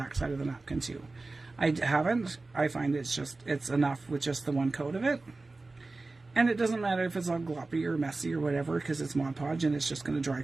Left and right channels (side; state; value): left; quieter; 3.4 dB